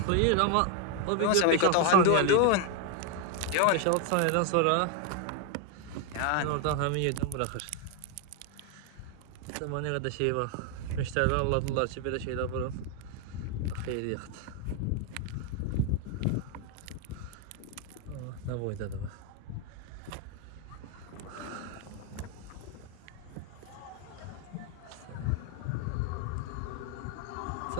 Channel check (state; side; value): different; both; correlation 0.01